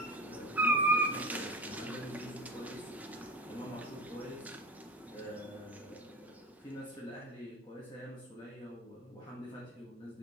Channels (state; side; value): normal; both; correlation 0.29